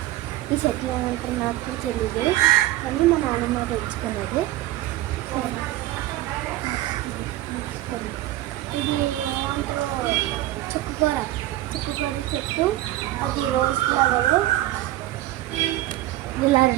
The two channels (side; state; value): left; quieter; 15.6 dB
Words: ఈ చెట్లు ఏమంటారు నాకు కూడా తెలియదు, కానీ మా నాన్నమ్మ పెంచుకున్నది. ఇది ఏమంటారు చుక్కుకూర చెట్టు. అది రోజ్ ఫ్లవర్. ఇలా